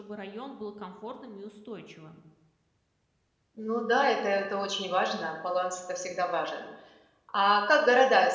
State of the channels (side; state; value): both; identical; correlation 1.00